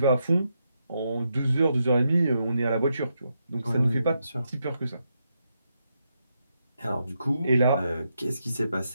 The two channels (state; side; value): inverted; both; correlation -0.82